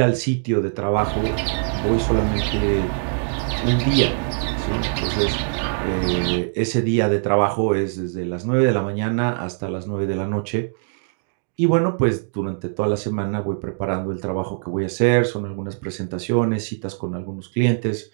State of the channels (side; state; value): left; silent; 64 dB below the other